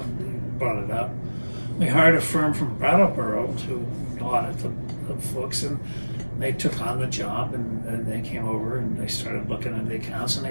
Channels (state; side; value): inverted; both; correlation -1.00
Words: brought it up. We hired a firm from Brattleboro to audit the books, and they took on the job, and they came over and they started looking at the accounts, and they